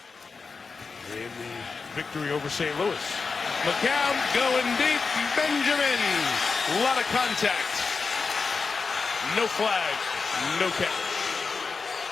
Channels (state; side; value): quieter; right; 4.7 dB